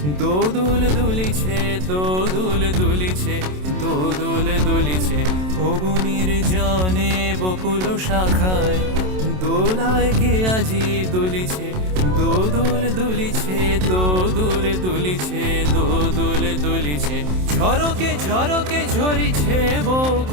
দোদুল দুলিছে, দোদুল দুলিছে, দোদুল দুলিছে। ওগো নির্জনে বকুল শাখায় দোলায় কে আজি দুলিছে, দোদুল দুলিছে, দোদুল দুলিছে, দোদুল দুলিছে। ঝরকে ঝরকে ঝরিছে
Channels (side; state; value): left; late; 27 ms